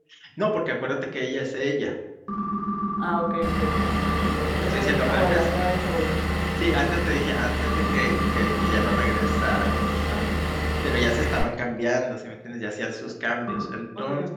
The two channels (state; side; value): identical; both; correlation 1.00